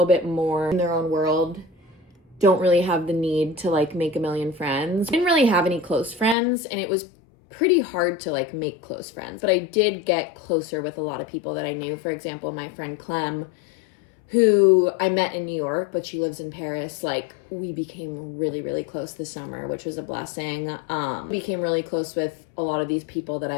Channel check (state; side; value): drops out; right; at 6.4 s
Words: bit more in their own world, don't really have the need to like make a million friends. I didn't really have any close friends, and it was pretty hard to like make close friends, but I did get closer with a lot of people that I knew. For example, my friend Clem, who I met in New York, but she lives in Paris. Like, we became really, really close this summer, which was a blessing. Became really close with a lot of these people that